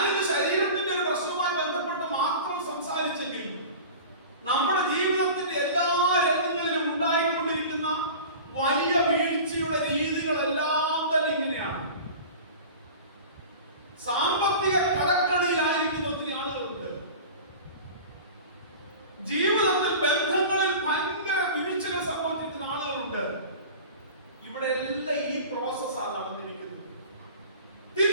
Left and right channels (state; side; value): inverted; both; correlation -0.37